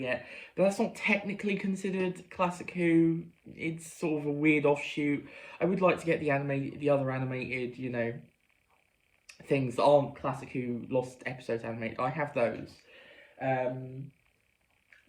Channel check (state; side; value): identical; both; correlation 1.00